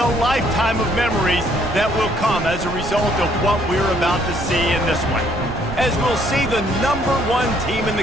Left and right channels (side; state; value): right; noise; rumble, 10 dB below the sound